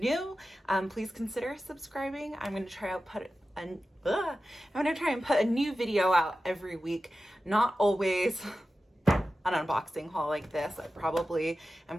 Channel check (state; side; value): normal; both; correlation 0.93